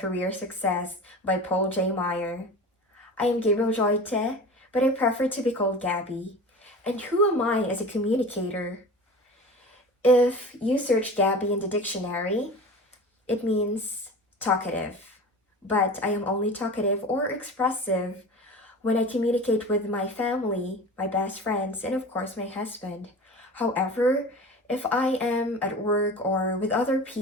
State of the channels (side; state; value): both; normal; correlation 0.35